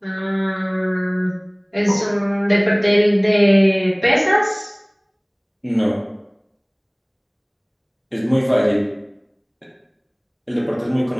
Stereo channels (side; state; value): both; identical; correlation 1.00